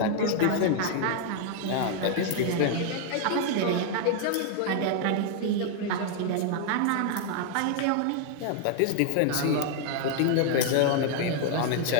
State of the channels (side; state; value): both; different; correlation 0.00